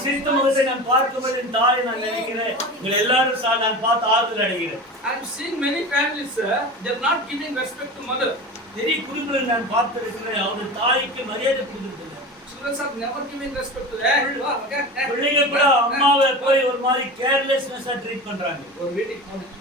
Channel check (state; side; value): normal; both; correlation 0.31